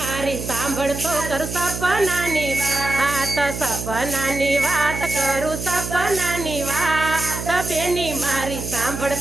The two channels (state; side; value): noise; right; hum, 7 dB below the sound